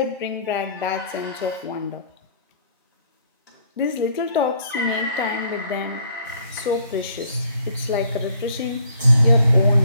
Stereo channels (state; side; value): inverted; both; correlation -0.62